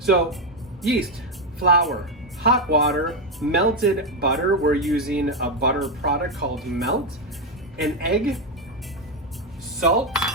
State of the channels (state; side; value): normal; both; correlation 0.07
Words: yeast, flour, hot water, melted butter. We're using a butter product called Melt. An egg, salt,